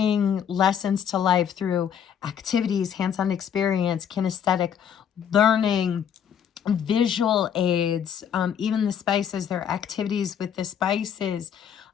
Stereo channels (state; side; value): quieter; right; 8.5 dB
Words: lessons to life through activities, hands-on experience, kinesthetic learning, visual aids, even the spices, there are activities with the spices.